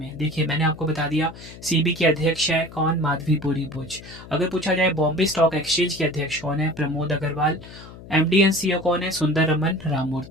देखिए मैंने आपको बता दिया, सेबी के अध्यक्ष है कौन, माधवी पुरी बुच। अगर पूछा जाए बॉम्बे स्टॉक एक्सचेंज के अध्यक्ष कौन है, Pramod Agarwal. MD and CEO कौन है, सुंदर रमन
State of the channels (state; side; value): noise; left; hum, 17 dB below the sound